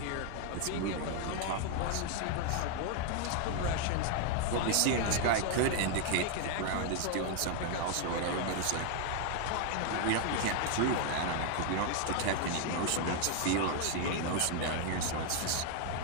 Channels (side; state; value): both; different; correlation 0.00